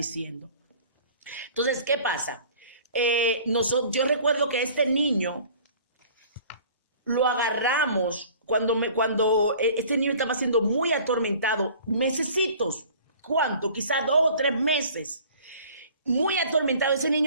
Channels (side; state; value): both; inverted; correlation -0.48